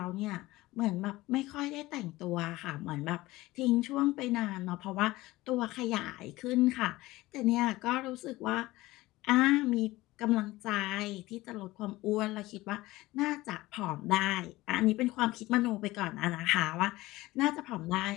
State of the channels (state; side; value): quieter; right; 18.7 dB